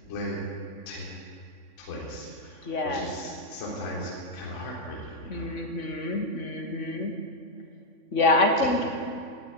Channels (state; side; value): late; right; 3.5 ms